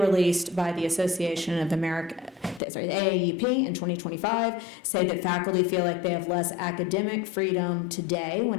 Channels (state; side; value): drops out; right; at 2.6 s